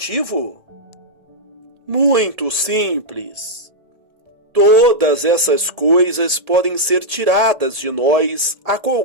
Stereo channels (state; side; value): late; left; 1.7 ms